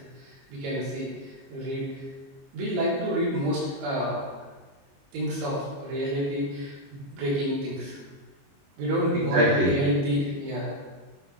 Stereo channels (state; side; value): late; left; 22 ms